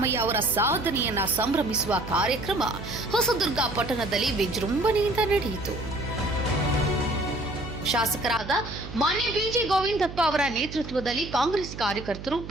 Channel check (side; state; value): right; noise; hum, 11 dB below the sound